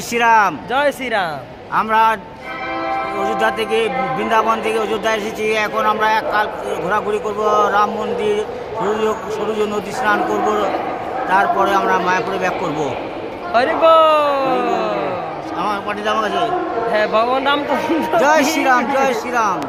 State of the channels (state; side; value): identical; both; correlation 1.00